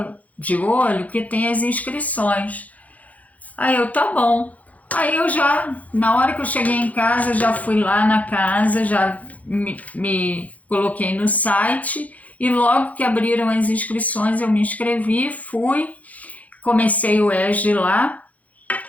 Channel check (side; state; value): right; late; 0.073 ms